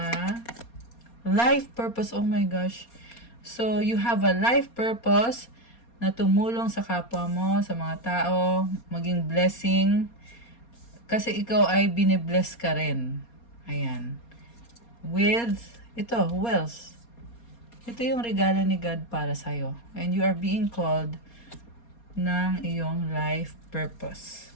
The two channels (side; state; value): right; late; 4.2 ms